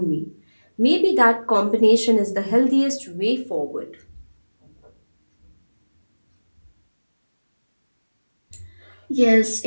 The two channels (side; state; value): both; inverted; correlation -1.00